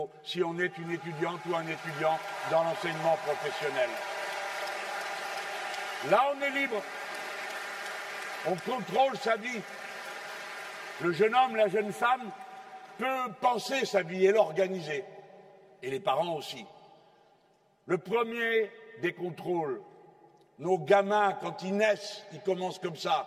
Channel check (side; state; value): both; identical; correlation 1.00